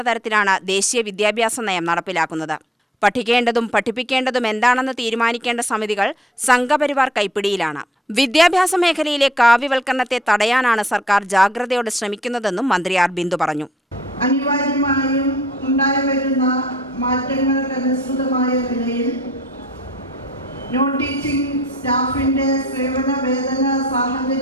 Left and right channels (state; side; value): normal; both; correlation 0.60